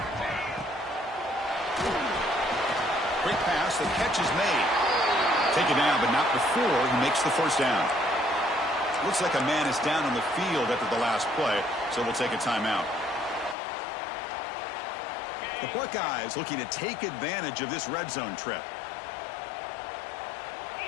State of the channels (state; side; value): drops out; right; at 13.6 s